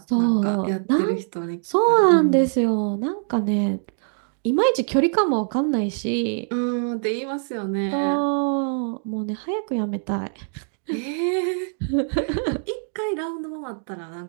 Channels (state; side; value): silent; left; digital silence